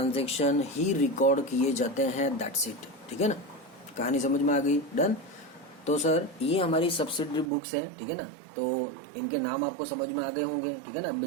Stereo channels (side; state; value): left; drops out; at 7.5 s